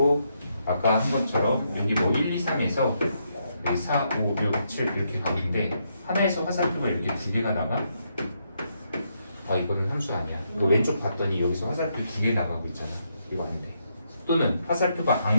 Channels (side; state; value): both; inverted; correlation -0.78